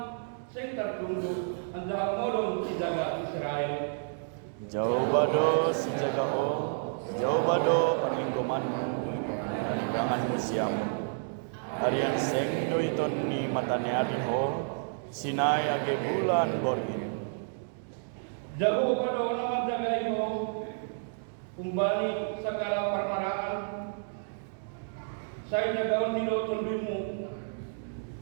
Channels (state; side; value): silent; left; digital silence